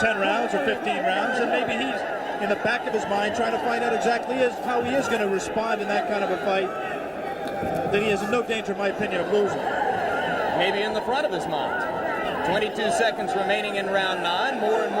rounds or 15 rounds, and maybe he's in the back of his mind trying to find out exactly how he is going to respond in that kind of a fight that he is in no danger, in my opinion, of losing. Maybe in the front of his mind. 22 seconds remaining in round 9. More and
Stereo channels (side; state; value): both; identical; correlation 1.00